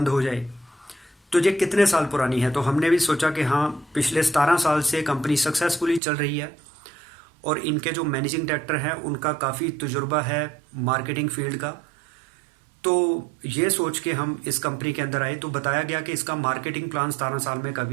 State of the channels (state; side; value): drops out; left; at 6.0 s